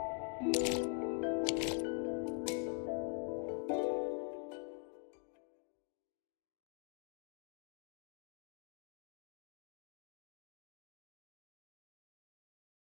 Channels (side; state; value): right; quieter; 37.4 dB